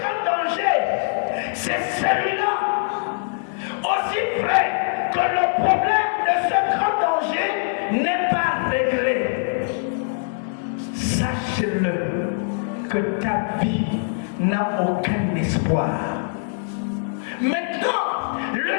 danger, c'est celui-là. Aussi vrai que le problème de ce grand danger n'est pas réglé. Sache-le que ta vie n'a aucun espoir. Maintenant, le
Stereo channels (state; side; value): silent; right; 64 dB below the other